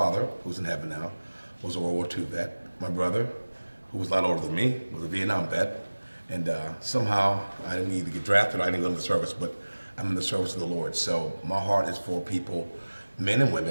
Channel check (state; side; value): inverted; both; correlation -1.00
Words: who's in heaven now, was a World War II vet. My brother, who was a lot older than me, was a Vietnam vet. And somehow I didn't either get drafted or I didn't go into the service, but I'm in the service of the Lord. So my heart is for people, men and